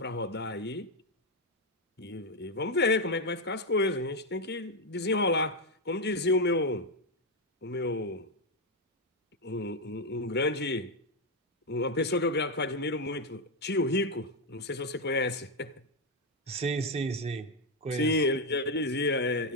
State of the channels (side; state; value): both; normal; correlation 0.04